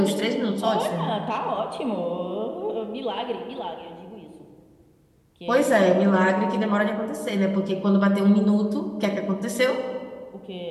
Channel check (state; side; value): identical; both; correlation 1.00